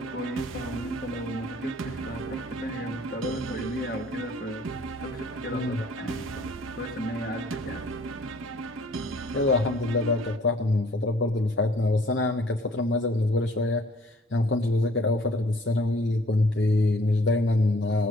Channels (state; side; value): normal; both; correlation 0.56